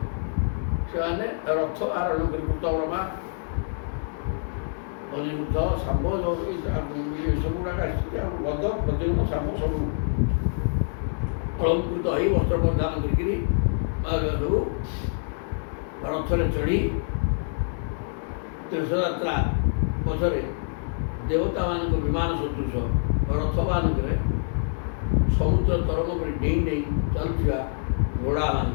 ସେମାନେ ରଥ ଆରୋହଣ କରି କୃତବର୍ମା, ଅନିରୁଦ୍ଧ, ଶାମ୍ବ ଏସବୁ ଗୁଡ଼ାକ ଆସିଛନ୍ତି। ଆଉ ଗଦ ପ୍ରଦ୍ୟୁମ୍ନ ଶାମ୍ବ ସବୁ ଅଳଙ୍କୃତ ହୋଇ ବସ୍ତ୍ର ପରିଧାନ କରିକିରି ସବୁ ରଥରେ ଚଢ଼ି ତୀର୍ଥଯାତ୍ରା ପଛରେ ଦେବତାମାନଙ୍କ ବିମାନ ସଦୃଶ ରଥମାନଙ୍କରେ ସମୁଦ୍ର ତରଙ୍ଗ ପରି ଡେଇଁ ଡେଇଁ ଚାଲୁଥିବା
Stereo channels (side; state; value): right; silent; digital silence